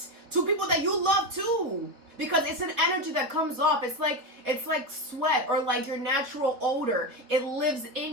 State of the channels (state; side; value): late; left; 4.2 ms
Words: to people that you love too. Because it's an energy that comes off. It's like sweat or like your natural odor. It lives